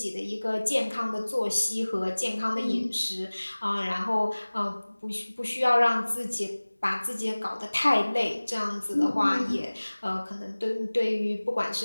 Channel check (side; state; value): both; inverted; correlation -1.00